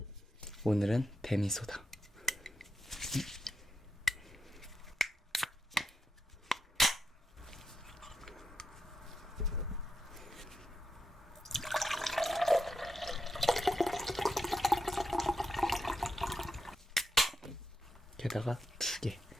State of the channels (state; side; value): normal; both; correlation 0.85